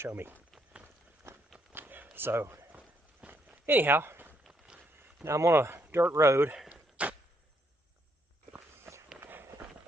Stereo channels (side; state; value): both; normal; correlation 0.74